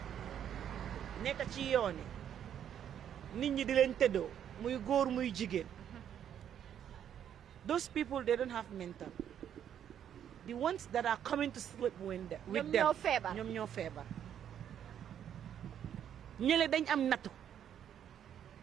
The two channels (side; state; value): left; quieter; 9.5 dB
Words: nekk ci yooni nit ñi di leen tëddoo muy góor muy jigéen those people they don't have mental the ones that are coming to sleep with them ñoom ñoo feebar ñële dañ am nattu